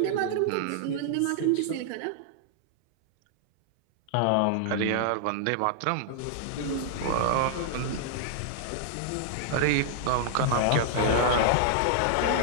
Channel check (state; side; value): different; both; correlation -0.01